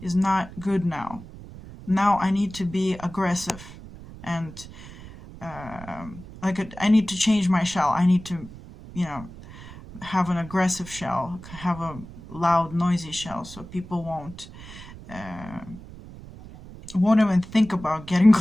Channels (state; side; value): noise; right; rumble, 16 dB below the sound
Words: is not good now. Now I need to be aggressive, and I need to change my shell. I need to, you know, have an aggressive shell, have a loud, noisy shell, so people won't even think about getting